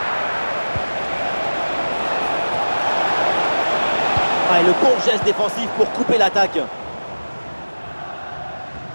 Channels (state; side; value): inverted; both; correlation -1.00